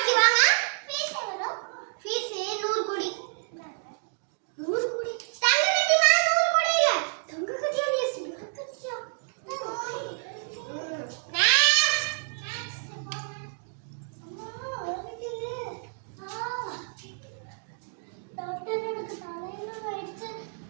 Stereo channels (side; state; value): left; silent; 59 dB below the other